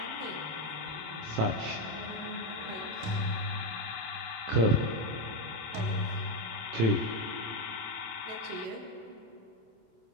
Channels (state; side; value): late; left; 27 ms